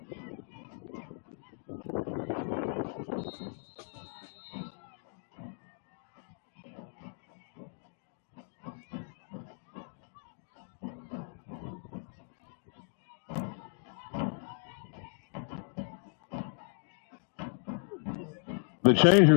The change are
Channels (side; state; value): right; silent; 54 dB below the other